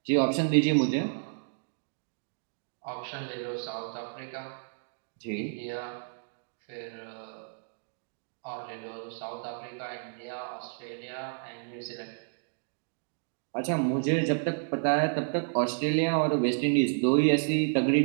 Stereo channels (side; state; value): left; silent; digital silence